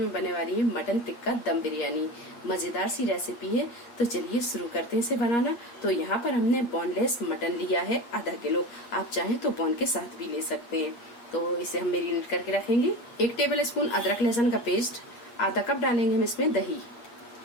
बनने वाली है मटन टिक्का दम बिरयानी। मजेदार सी रेसिपी है, तो चलिए शुरू करते हैं इसे बनाना। तो यहाँ पर हमने बोनलेस मटन लिया है आधा किलो। आप चाहें तो बोन के साथ भी ले सकते हैं। तो इसे हम मेरिनेट करके रखेंगे। 1 टेबल स्पून अदरक लहसुन का पेस्ट, आधा कप डालेंगे हम इसमें दही,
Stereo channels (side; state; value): right; late; 8.5 ms